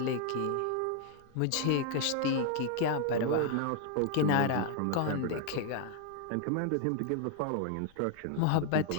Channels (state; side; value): different; both; correlation 0.00